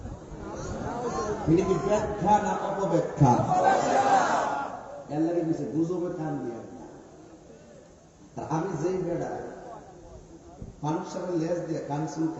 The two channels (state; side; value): identical; both; correlation 1.00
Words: এটা কি ব্যাখ্যা না অপব্যাখ্যা? এর লাগে কিছু গুজবে কান দিয়া। আমি যেই বেড়া মানুষের সাথে লেজ দিয়ে কান